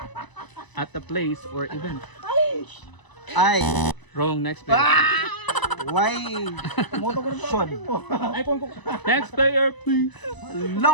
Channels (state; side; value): late; right; 1.0 ms